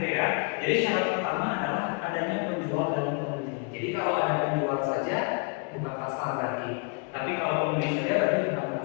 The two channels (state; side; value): quieter; right; 34.6 dB